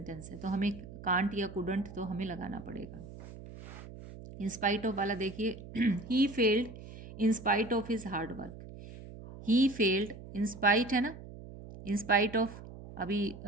है तो हमें कांट या कुडंट तो हमें लगाना पड़ेगा। इन स्पाइट ऑफ वाला देखिए, he failed in spite of his hard work. He failed, in spite है ना, इन स्पाइट ऑफ, अभी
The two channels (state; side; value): noise; right; hum, 14 dB below the sound